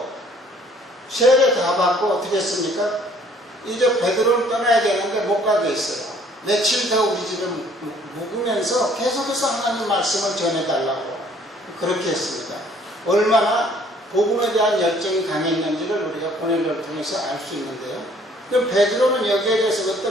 세례 다 받고 어떻게 했습니까? 이제 베드로를 떠나야 되는데 못 가게 했어요. 며칠 더 우리 집에 묵으면서 계속해서 하나님 말씀을 전해달라고 그렇게 했습니다. 얼마나 복음에 대한 열정이 강했는지를 우리가 고넬료를 통해서 알 수 있는데요. 그럼 베드로는 여기에 대해서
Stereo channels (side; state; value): both; normal; correlation 0.59